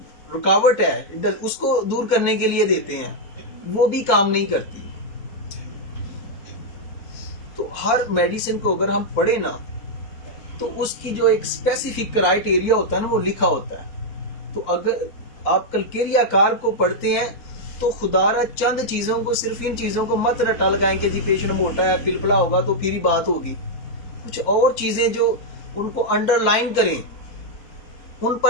रुकावट है हिडन उसको दूर करने के लिए देते हैं, वो भी काम नहीं करती। तो हर मेडिसिन को अगर हम पढ़े ना, तो उसकी जो एक स्पेसिफिक क्राइटेरिया होता है ना, वो लिखा होता है। तो अगर आप कलकेरिया कार को पढ़ते हैं तो खुदारा चंद चीजों को, सिर्फ इन चीजों को मत रटा लगाएं कि जी पेशेंट मोटा है, पिलपला होगा तो फिर ही बात होगी। कुछ और चीजें जो उनको अंडरलाइन करें, उन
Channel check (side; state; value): right; late; 4.2 ms